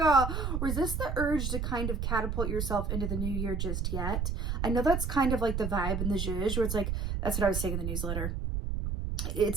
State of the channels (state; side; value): noise; right; rumble, 1 dB below the sound